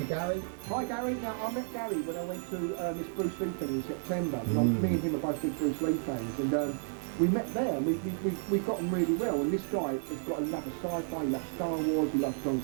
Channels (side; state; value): left; silent; digital silence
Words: it, Gary. Hi, Gary. Now, I met Gary when I went to this Bruce Lee thing in September. Me and him are both big Bruce Lee fans, and we met there, and we got on really well. And this guy has got a love of sci-fi. He loves Star Wars. He loves John